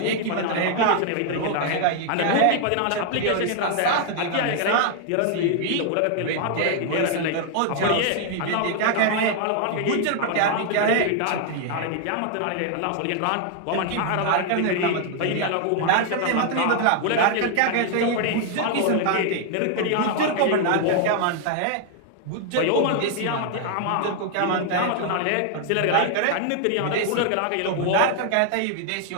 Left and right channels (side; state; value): both; different; correlation 0.00